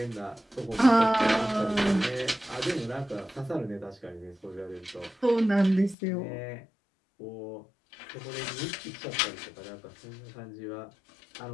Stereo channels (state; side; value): drops out; right; at 6.0 s